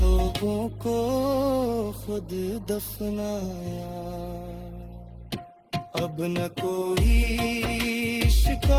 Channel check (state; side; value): identical; both; correlation 1.00